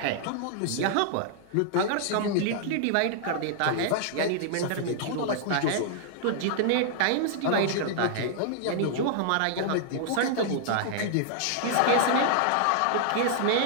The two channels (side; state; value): both; different; correlation -0.01